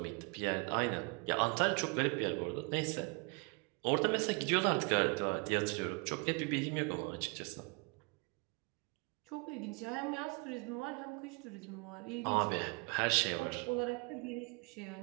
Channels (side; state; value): left; quieter; 31.3 dB